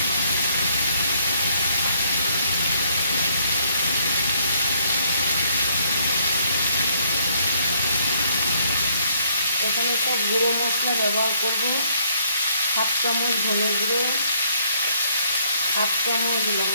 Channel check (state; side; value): inverted; both; correlation -0.67